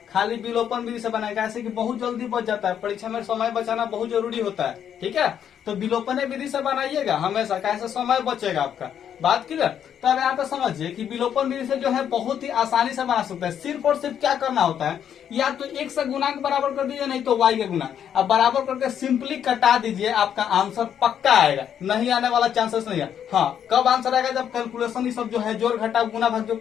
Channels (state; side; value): quieter; right; 9.0 dB